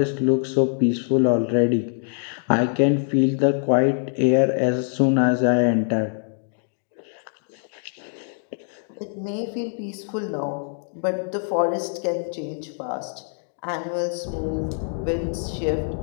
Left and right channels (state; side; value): silent; right; 62 dB below the other